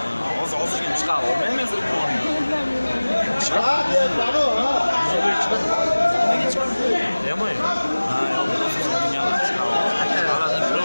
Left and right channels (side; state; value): both; inverted; correlation -1.00